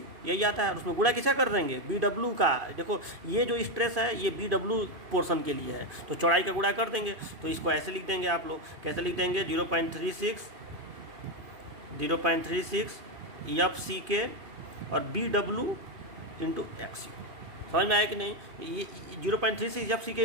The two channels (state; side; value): late; left; 2.5 ms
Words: यही आता है। उसमें गुणा किसका कर देंगे? BW का। देखो ये जो स्ट्रेस है ये BW पोर्शन के लिए है, तो चौड़ाई का गुणा कर देंगे। तो इसको ऐसे लिख देंगे आप लोग, कैसे लिख देंगे, 0.36 FCK और BW इंटू XU। समझ में आया कि नहीं? ये 0.36 FCK